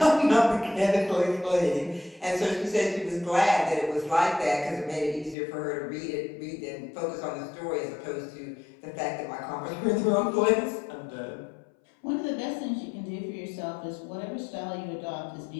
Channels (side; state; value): right; drops out; at 5.4 s